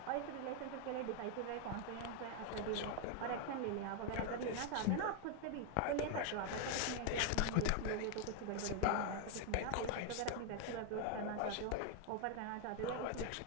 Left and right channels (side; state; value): both; different; correlation 0.00